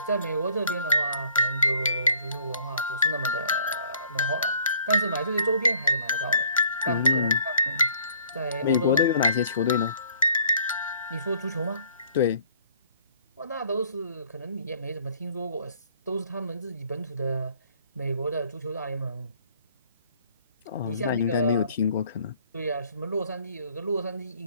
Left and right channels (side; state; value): both; inverted; correlation -0.60